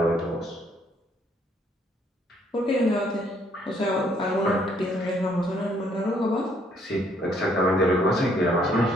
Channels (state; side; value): normal; both; correlation 0.67